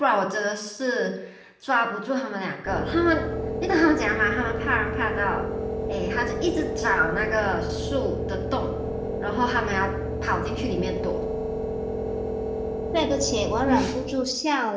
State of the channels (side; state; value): both; identical; correlation 1.00